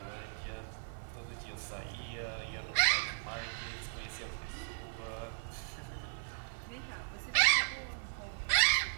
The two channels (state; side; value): silent; left; 53 dB below the other